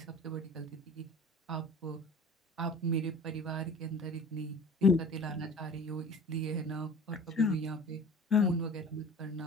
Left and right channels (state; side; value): normal; both; correlation 0.43